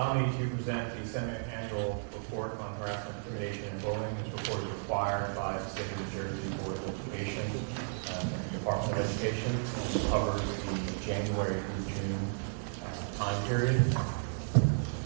me to present the semi-annual report on harassment, intimidation, and bullying. This report is required by the State of New Jersey Board of Education and the Department of Education, which covers the January through June time period.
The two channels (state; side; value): silent; left; digital silence